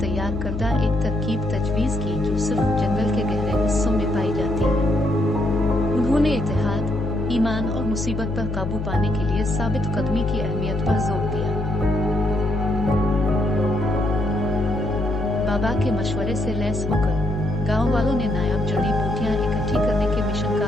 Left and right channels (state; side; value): noise; left; hum, 4 dB below the sound